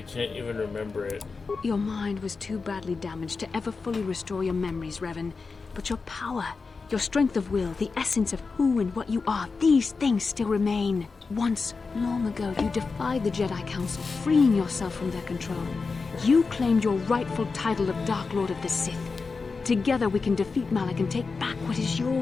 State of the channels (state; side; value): quieter; right; 4.5 dB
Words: can't even remember it? Your mind was too badly damaged to ever fully restore your memories, Revan. But your power, your strength of will, the essence of who and what you are, these things still remain. Once, long ago, you defied the Jedi Council, freeing yourself from their control. You claimed your rightful title of Dark Lord of the Sith. Together we can defeat Malak and take back what is